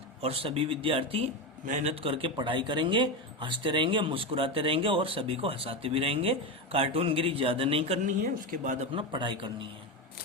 और सभी विद्यार्थी मेहनत करके पढ़ाई करेंगे, हंसते रहेंगे, मुस्कुराते रहेंगे और सभी को हंसाते भी रहेंगे। कार्टूनगिरी ज्यादा नहीं करनी है, उसके बाद अपना पढ़ाई करनी है।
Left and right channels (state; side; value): normal; both; correlation 0.15